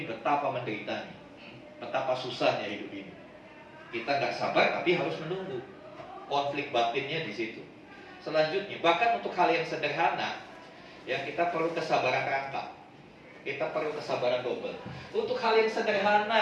betapa menderitanya, betapa susahnya hidup ini. Kita nggak sabar tapi harus menunggu. Konflik batinnya di situ. Selanjutnya, bahkan untuk hal yang sederhana, ya kita perlu kesabaran rangkap. Kita perlu kesabaran double. Untuk hal yang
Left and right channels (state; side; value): identical; both; correlation 1.00